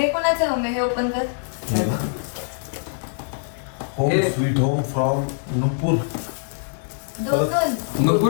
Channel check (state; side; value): silent; right; 63 dB below the other